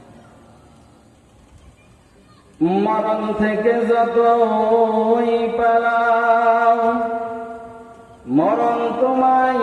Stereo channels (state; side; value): identical; both; correlation 1.00